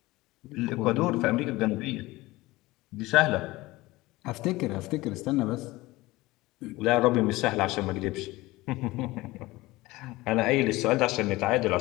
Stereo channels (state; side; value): quieter; right; 19.8 dB